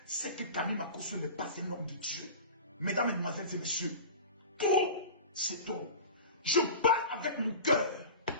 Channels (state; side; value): inverted; both; correlation -0.34